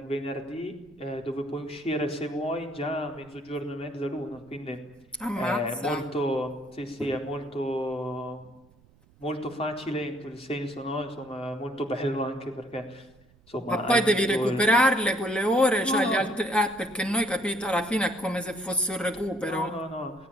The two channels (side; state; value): right; noise; rumble, 29 dB below the sound